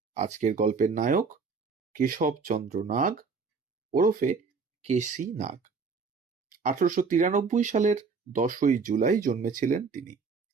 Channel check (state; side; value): quieter; left; 4.9 dB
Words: আজকের গল্পের নায়ক কেশবচন্দ্র নাগ, ওরফে কেসি নাগ। 1893 সালের 10ই জুলাই জন্মেছিলেন তিনি।